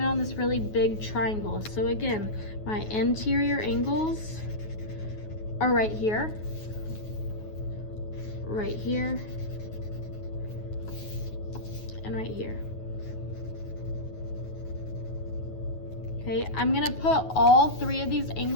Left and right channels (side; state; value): right; late; 9.4 ms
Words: on this really big triangle. So again, my interior angles are right here. right here, and right here. Okay, I'm gonna put all three of these